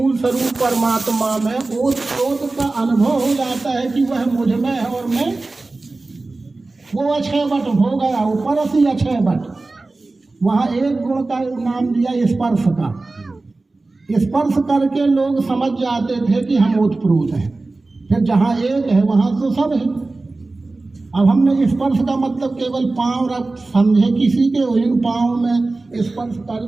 स्वरूप परमात्मा में ओतप्रोत का अनुभव हो जाता है कि वह मुझ में है और मैं वो अक्षय बट हो गया, ऊपर असी अक्षय बट। वहाँ एक गुण का नाम दिया स्पर्श का। स्पर्श करके लोग समझ जाते थे कि हम ओतप्रोत हैं, फिर जहाँ एक है वहाँ तो सब है। अब हमने स्पर्श का मतलब केवल पांव रख समझे, किसी के इन पांव में स्पर्श कर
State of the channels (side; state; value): left; quieter; 3.3 dB